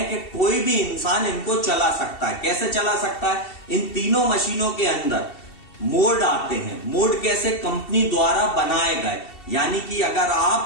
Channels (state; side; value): late; right; 2.7 ms